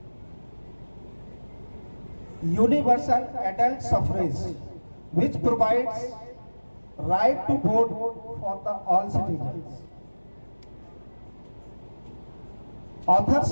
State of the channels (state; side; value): inverted; both; correlation -1.00